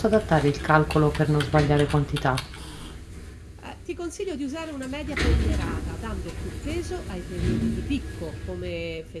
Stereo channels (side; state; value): both; identical; correlation 1.00